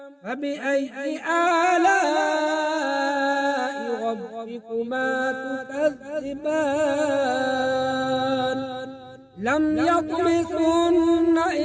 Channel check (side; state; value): both; identical; correlation 1.00